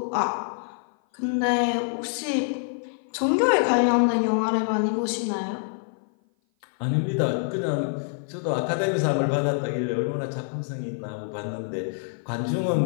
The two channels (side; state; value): right; silent; 56 dB below the other